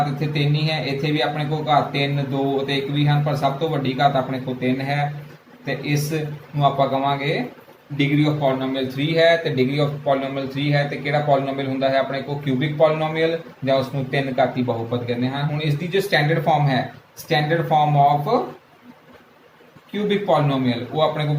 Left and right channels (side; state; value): both; identical; correlation 1.00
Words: ਇੱਥੇ 3 ਹੀ ਹੈ, ਇੱਥੇ ਵੀ ਆਪਣੇ ਕੋਲ ਘਾਤ 3, 2 ਅਤੇ 1 ਵੀ ਹਨ, ਪਰ ਸਭ ਤੋਂ ਵੱਡੀ ਘਾਤ ਆਪਣੇ ਕੋਲ 3 ਹੈ। ਤੇ ਇਸ ਨੂੰ ਆਪਾਂ ਕਵਾਂਗੇ ਡਿਗਰੀ ਆਫ ਪੋਲੀਨੋਮੀਅਲ 3 ਹੈ। ਤੇ ਡਿਗਰੀ ਆਫ ਪੋਲੀਨੋਮੀਅਲ 3 ਹੈ ਤੇ ਕਿਹੜਾ ਪੋਲੀਨੋਮੀਅਲ ਹੁੰਦਾ ਹੈ ਆਪਣੇ ਕੋਲ, ਕਿਊਬਿਕ ਪੋਲੀਨੋਮੀਅਲ, ਜਾਂ ਉਸ ਨੂੰ 3 ਘਾਤੀ ਬਹੁਪਦ ਕਹਿੰਦੇ ਹਨ। ਹੁਣ ਇਸ ਦੀ ਜੋ ਸਟੈਂਡਰਡ ਫਾਰਮ ਹੈ, standard form of cubic polynomial, ਉਹ ਆਪਣੇ ਕੋਲ